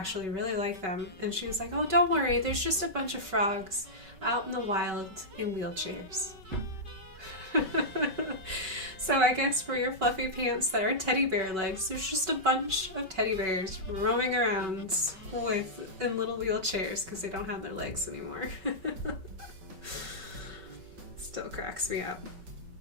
really like them. And she was like, oh, don't worry. There's just a bunch of frogs out in the wild in wheelchairs. So I guess for your fluffy pants that are teddy bear legs, there's just a bunch of teddy bears roaming around in little wheelchairs because they don't have their legs anymore. Still cracks me up.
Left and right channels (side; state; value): left; late; 5.3 ms